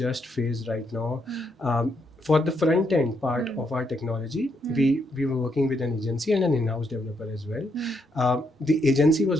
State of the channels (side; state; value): both; normal; correlation 0.77